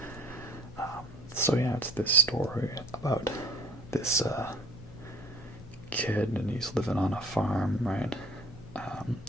So yeah, it's this story about this kid, and he's living on a farm, right?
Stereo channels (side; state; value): left; noise; hum, 20 dB below the sound